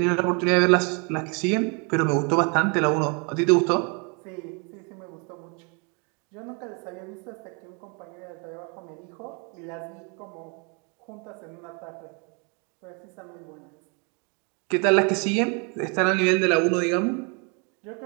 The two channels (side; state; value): left; quieter; 34.6 dB